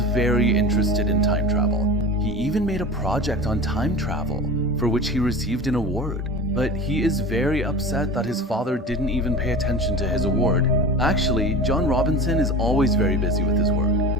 very interested in time travel. He even made a project on time travel, for which he received an award. But he is very upset that his father didn't even pay attention to his award. Actually, John Robinson is always very busy with his work.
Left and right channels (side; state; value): both; normal; correlation 0.33